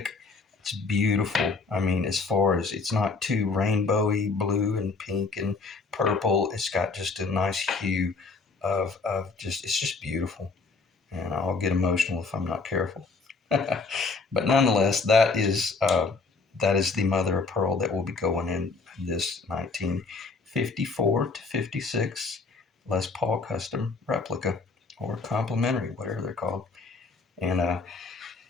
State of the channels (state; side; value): quieter; right; 4.2 dB